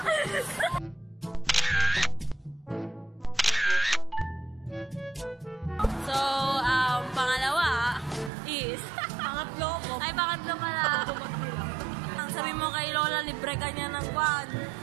So, pangalawa is Pangatlo ko. ay, pangatlo pala. Ang sabi mo kay Lola, libre ka niya ng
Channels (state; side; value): drops out; left; at 8.3 s